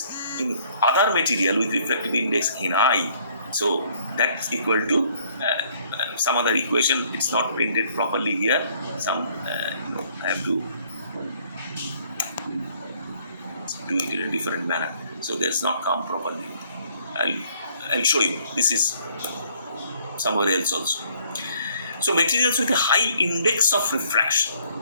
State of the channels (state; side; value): inverted; both; correlation -0.63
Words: in other material with reflective index in I, so that's equal to some other equation. It's not printed properly here. I have to do it in a different manner. So that's not come properly. I'll show you. This is somewhere else also. So materials with a high index of refraction.